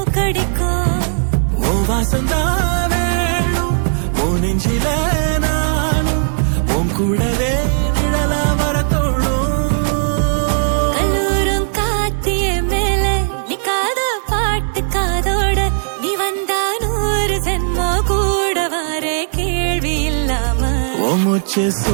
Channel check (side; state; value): left; silent; digital silence